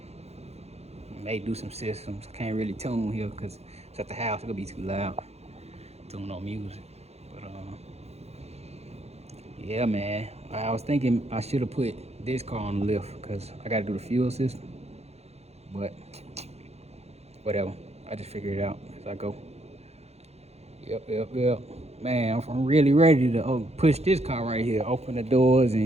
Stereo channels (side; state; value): left; late; 0.31 ms